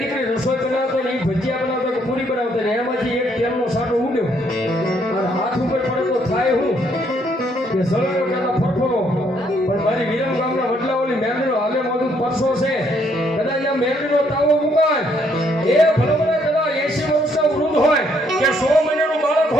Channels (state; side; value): normal; both; correlation 0.69